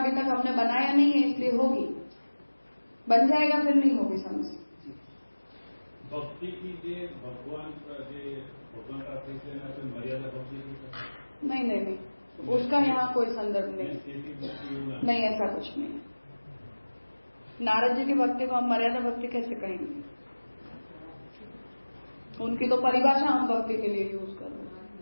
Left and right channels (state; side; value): inverted; both; correlation -1.00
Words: तक हमने बनाया नहीं है, इसलिए होगी, बन जाएगा फिर नहीं होगी समझ। भक्ति कीजिए, भगवान का मर्यादा भक्ति नहीं, उसका यहाँ कोई संदर्भ नहीं, ऐसा कुछ नहीं है। नारद जी की भक्ति को हम मर्यादा भक्ति कैसे कहेंगे? उनकी तो परिभाषा हम भक्ति के लिए यूज कर रहे